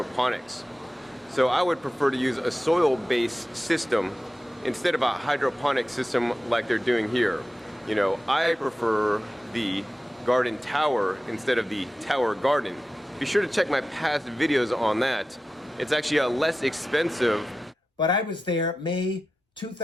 So I would prefer to use a soil-based system instead of a hydroponic system like they're doing here. You know, I prefer the garden tower instead of the Tower Garden. Be sure to check my past videos on that. It's actually a less expensive. But I was there May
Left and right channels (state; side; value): normal; both; correlation 0.93